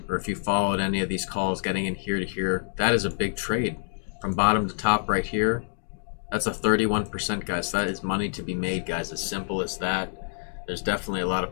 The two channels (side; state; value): right; silent; digital silence